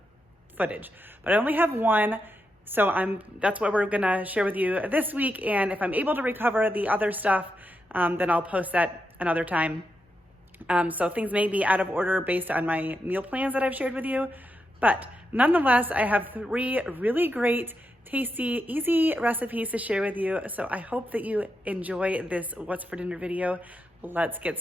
footage, but I only have one. So that's what we're gonna share with you this week. And if I'm able to recover the other stuff, then I'll post that another time. So things may be out of order based on my meal plans that I've shared with you. But nonetheless, I have 3 really great, tasty, easy recipes to share with you. So I hope that you enjoy this What's for Dinner video. Let's get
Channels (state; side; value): normal; both; correlation 0.85